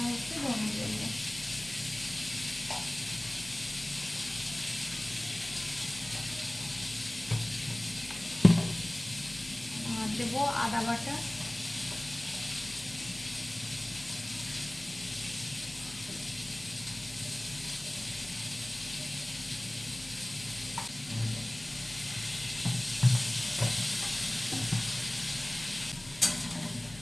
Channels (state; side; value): noise; left; hum, 20 dB below the sound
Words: একটু ধনে দেবো। আর দেবো আদা বাটা,